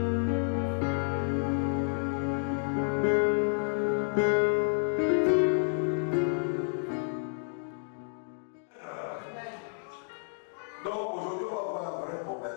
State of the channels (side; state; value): right; silent; digital silence